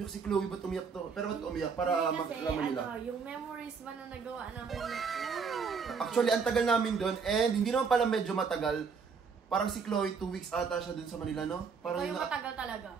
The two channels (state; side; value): quieter; left; 5.6 dB